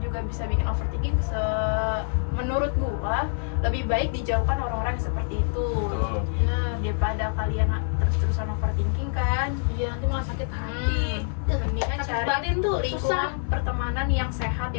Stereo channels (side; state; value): right; silent; 61 dB below the other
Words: bisa bikin overthinking. Menurut gue lebih baik dijauhkan orang-orang yang seperti itu. Betul. Daripada kalian terus-terusan overthinking kan. Iya, nanti malah sakit hati. Mendingan Sakit cari batin tuh susah. lingkungan pertemanan yang sehat,